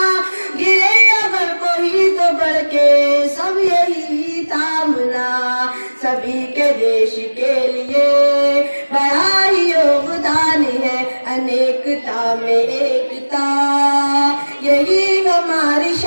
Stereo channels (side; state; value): both; inverted; correlation -1.00